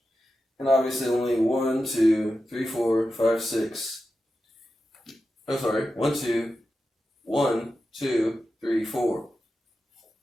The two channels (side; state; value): both; normal; correlation 0.91